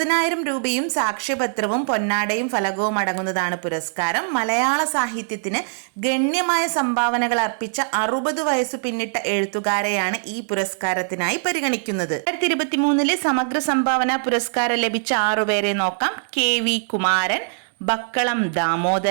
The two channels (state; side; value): silent; left; digital silence